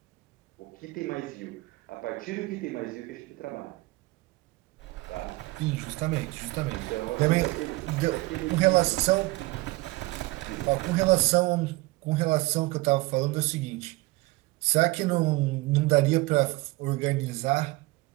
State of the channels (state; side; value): quieter; left; 21.4 dB